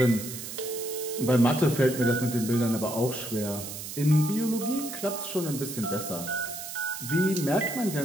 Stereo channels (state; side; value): noise; right; hiss, 9 dB below the sound